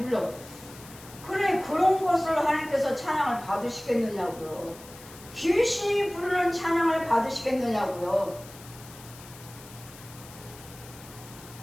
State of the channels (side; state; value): left; noise; hiss, 18 dB below the sound